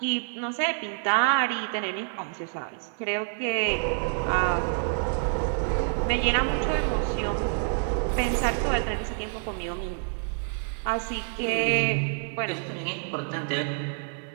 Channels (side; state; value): left; silent; 60 dB below the other